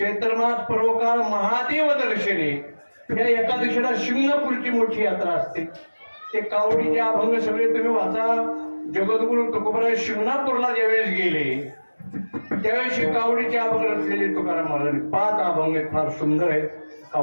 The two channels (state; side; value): inverted; both; correlation -1.00